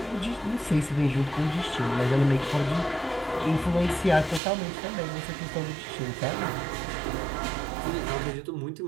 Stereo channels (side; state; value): left; drops out; at 4.4 s